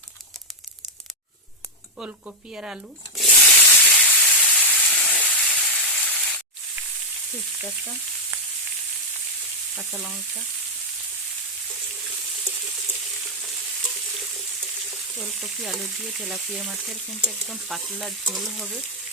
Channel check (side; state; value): both; normal; correlation -0.01